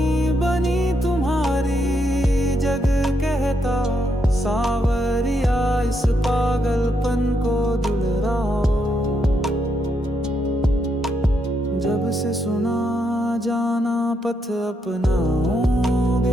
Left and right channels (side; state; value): both; normal; correlation 0.78